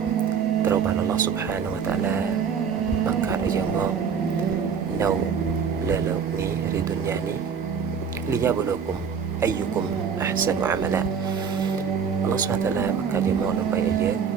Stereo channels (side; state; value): left; quieter; 6.6 dB